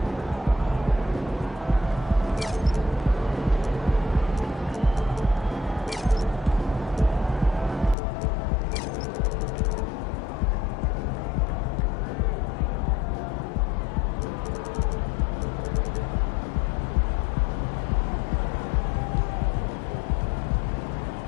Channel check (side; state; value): right; drops out; at 8.0 s